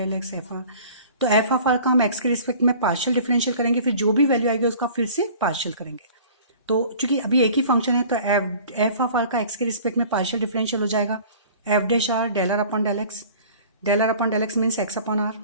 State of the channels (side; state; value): both; inverted; correlation -0.46